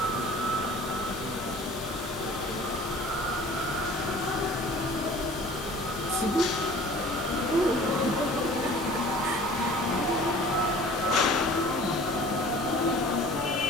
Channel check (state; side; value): normal; both; correlation 0.46